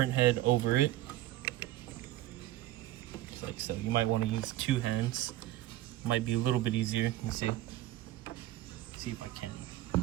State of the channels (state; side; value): quieter; left; 15.0 dB